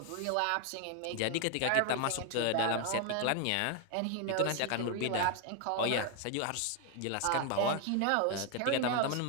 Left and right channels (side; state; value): both; different; correlation 0.01